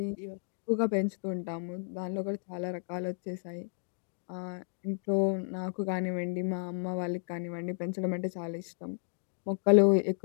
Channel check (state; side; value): silent; right; digital silence